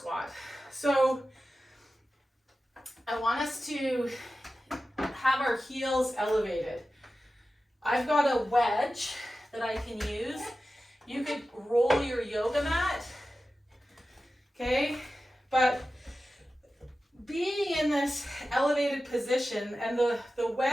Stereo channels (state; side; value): normal; both; correlation 0.94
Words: So I want us to have our heels elevated. I've got a wedge that I can use. You could roll your yoga mat, okay? But being in this elevated position, and the